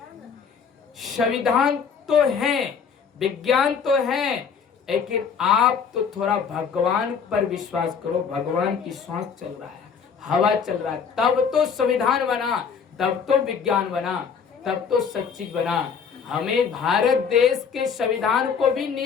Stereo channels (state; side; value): quieter; right; 6.4 dB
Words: संविधान तो है, विज्ञान तो है, लेकिन आप तो थोड़ा भगवान पर विश्वास करो। भगवान की सांस चल रहा है, हवा चल रहा है, तब तो संविधान बना, तब तो विज्ञान बना, तब तो सब चीज बना। हमें भारत देश के संविधान को भी